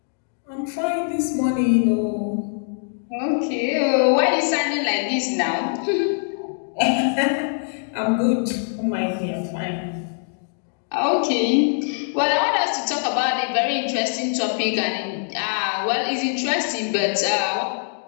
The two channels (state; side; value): silent; right; digital silence